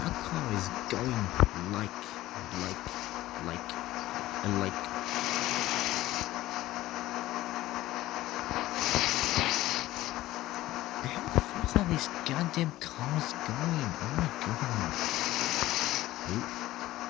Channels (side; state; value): right; quieter; 16.1 dB